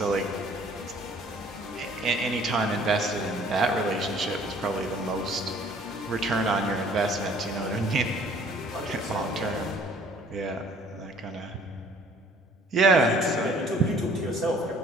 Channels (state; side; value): normal; both; correlation 0.56